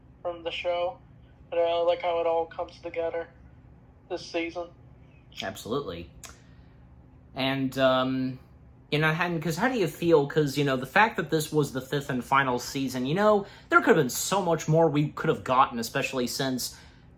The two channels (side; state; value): both; identical; correlation 1.00